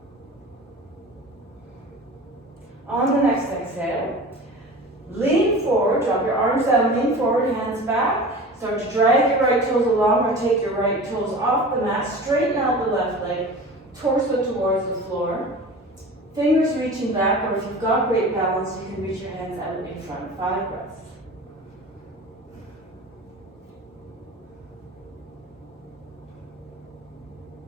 On the next exhale, lean forward, drop your arms down, lean forward, hands back. Start to drag your right toes along or take your right toes off the mat. Straighten out the left leg, torso towards the floor. Fingers reaching back, or if you've got great balance, you can reach your hands out in front. 5 breaths.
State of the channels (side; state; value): both; normal; correlation 0.37